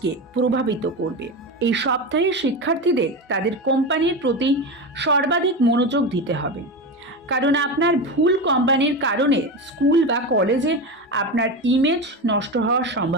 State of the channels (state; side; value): normal; both; correlation 0.20